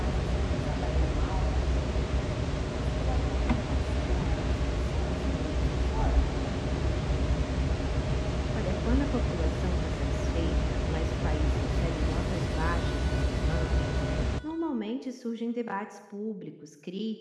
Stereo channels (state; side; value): identical; both; correlation 1.00